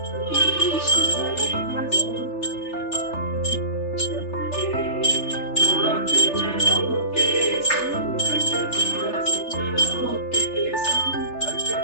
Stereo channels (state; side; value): late; right; 3.3 ms